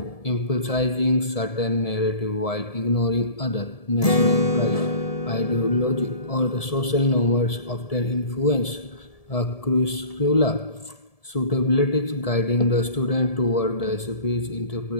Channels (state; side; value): late; right; 1.7 ms